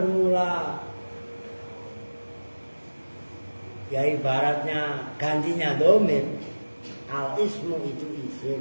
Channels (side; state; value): both; inverted; correlation -1.00